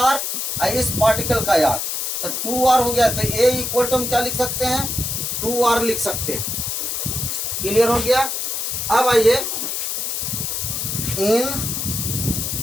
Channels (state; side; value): noise; left; hiss, 2 dB below the sound